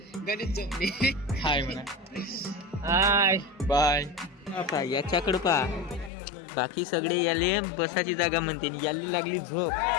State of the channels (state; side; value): drops out; right; at 6.1 s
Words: गणित जमली. हाय म्हणा. Hi bye. आता याच्याकडं पा. बाकी सगळे याले बसाची जागा म्हणते. याली लागली झोप.